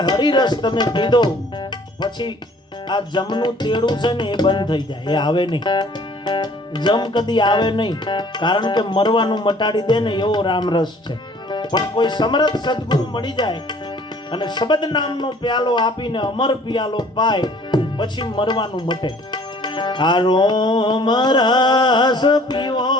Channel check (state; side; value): normal; both; correlation 0.54